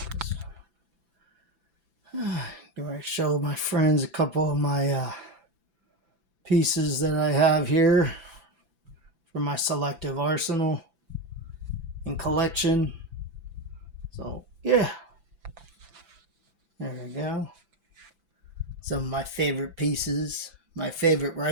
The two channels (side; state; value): left; late; 6.0 ms